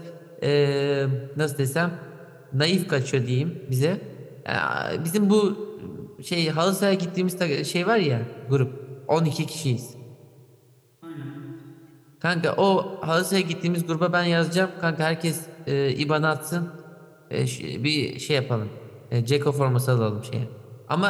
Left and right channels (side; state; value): both; identical; correlation 1.00